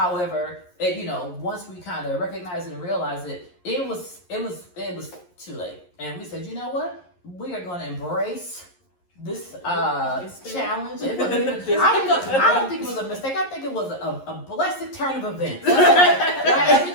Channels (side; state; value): right; late; 11 ms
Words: once we kind of recognized it and realized it was too late, and we said, you know what, we are going to embrace this challenge. I don't think it was a mistake. I think it was a blessed turn of events. Right?